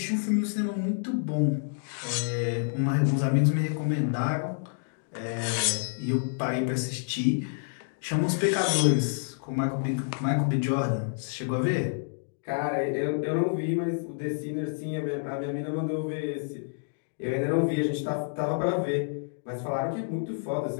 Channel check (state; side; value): silent; right; digital silence